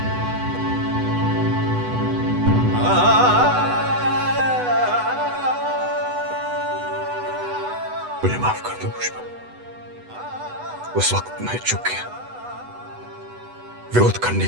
मुझे माफ कर दो पुष्पा, उस वक्त मैं चुप गया। विरोध करने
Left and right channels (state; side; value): late; left; 8.1 ms